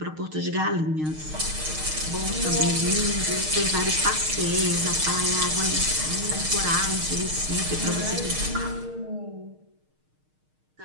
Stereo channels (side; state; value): left; late; 6.5 ms